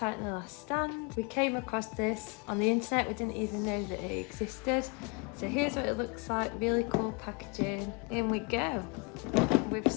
The Last Stand. We came across this on the internet, we didn't even know that it existed. So here's what it looks like, really cool packaging. In we go, with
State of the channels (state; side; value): quieter; right; 32.1 dB